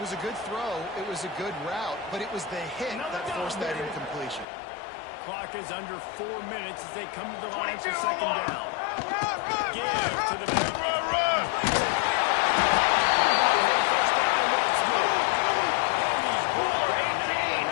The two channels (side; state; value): right; drops out; at 4.5 s